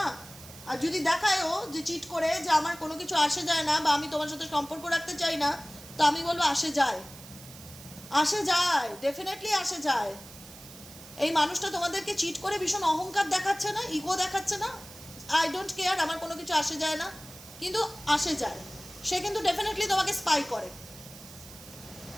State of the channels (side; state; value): right; noise; hiss, 17 dB below the sound